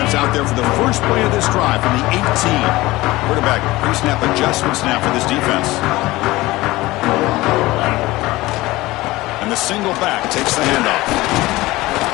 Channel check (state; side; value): quieter; right; 19.2 dB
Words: out there for the first play of this drive from the 18. Quarterback pre-snap adjustments now for this defense. And the single back takes the handoff.